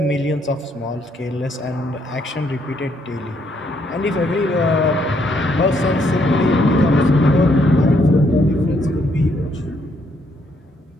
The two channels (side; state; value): both; normal; correlation 0.72